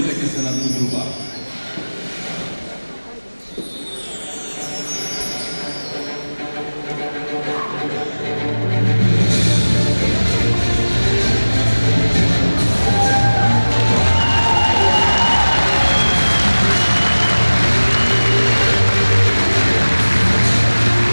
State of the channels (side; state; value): both; inverted; correlation -1.00